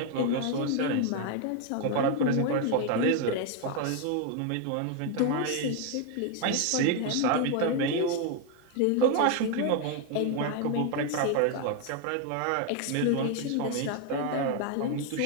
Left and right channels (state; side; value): different; both; correlation 0.01